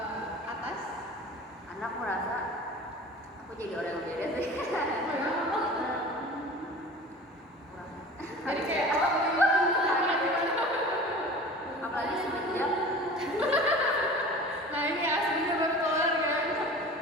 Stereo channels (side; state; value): both; normal; correlation 0.39